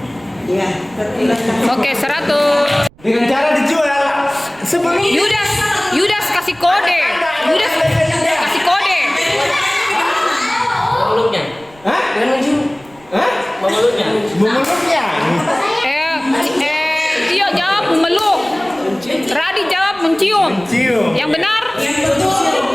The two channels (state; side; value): noise; right; rumble, 27 dB below the sound